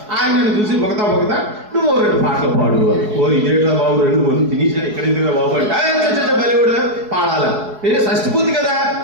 ఆయన నన్ను చూసి బొగతా నువ్వు 2 పాటలు పాడు. ఇదేట్రా బాబు, 2 మంది తినేసారు, ఇక్కడ ఎందుకు బాబు అంటే బలి కూడా పాడాలి. షష్ఠపూర్తి కదా,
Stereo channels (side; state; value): left; late; 4.7 ms